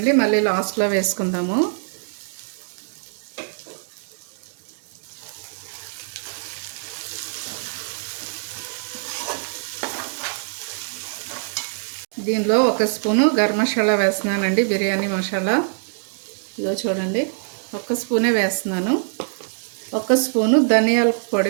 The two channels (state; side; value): silent; left; digital silence